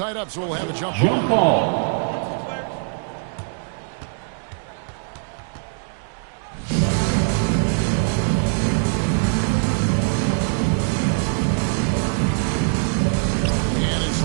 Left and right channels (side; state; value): left; silent; 64 dB below the other